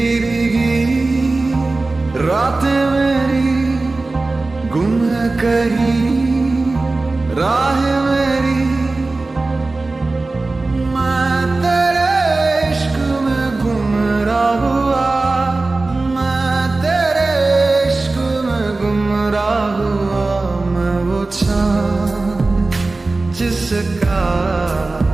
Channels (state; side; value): quieter; left; 3.3 dB